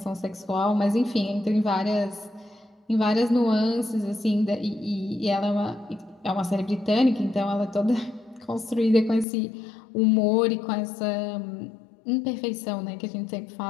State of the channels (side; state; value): right; drops out; at 9.2 s